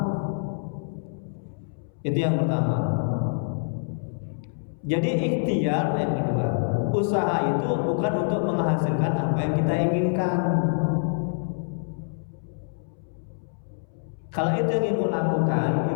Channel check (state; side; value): silent; right; 61 dB below the other